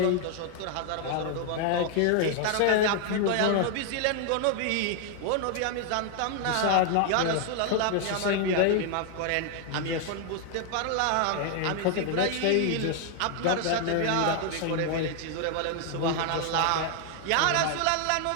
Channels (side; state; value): both; different; correlation 0.00